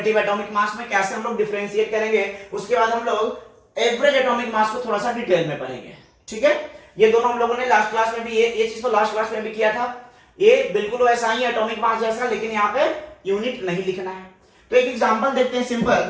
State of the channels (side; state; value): both; identical; correlation 1.00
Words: एटॉमिक मास में कैसे हम लोग डिफरेंशिएट करेंगे। उसके बाद हम लोग एवरेज एटॉमिक मास को थोड़ा सा डिटेल में पढ़ेंगे। ठीक है, ये दोनों हम लोगों ने लास्ट क्लास में भी ये चीज तो लास्ट क्लास में भी किया था। ये बिल्कुल वैसा ही एटॉमिक मास जैसा, लेकिन यहाँ पे यूनिट नहीं लिखना है। तो एक एग्जांपल देखते हैं